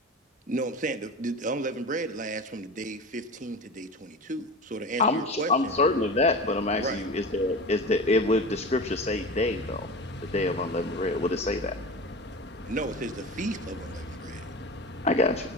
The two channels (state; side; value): normal; both; correlation 0.31